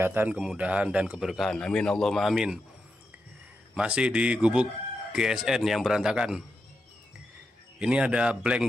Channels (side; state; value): both; normal; correlation 0.87